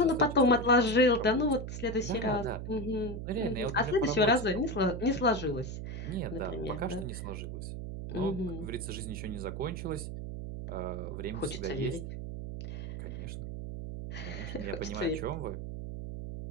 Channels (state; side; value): noise; right; hum, 6 dB below the sound